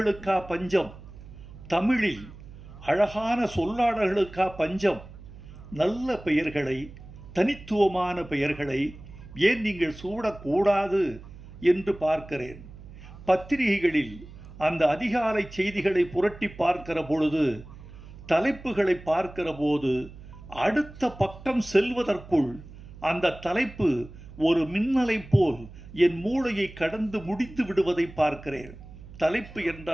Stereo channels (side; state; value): right; noise; hum, 17 dB below the sound